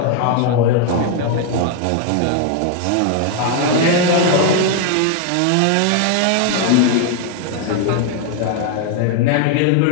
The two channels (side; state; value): both; different; correlation 0.00